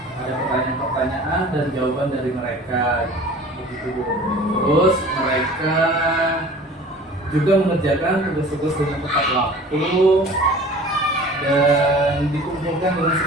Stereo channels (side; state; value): both; normal; correlation 0.44